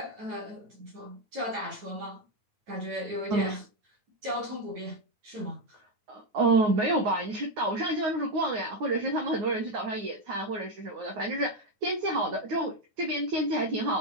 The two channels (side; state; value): left; late; 9.3 ms